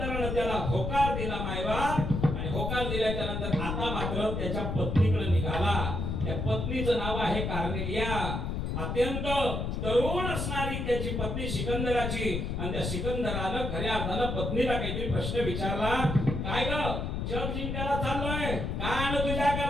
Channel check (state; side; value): noise; left; rumble, 2 dB below the sound